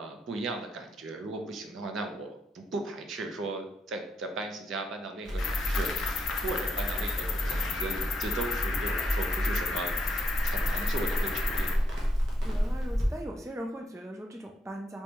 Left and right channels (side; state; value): both; normal; correlation 0.78